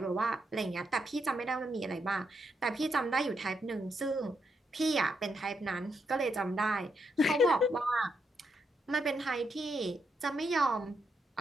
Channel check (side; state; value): both; normal; correlation 0.80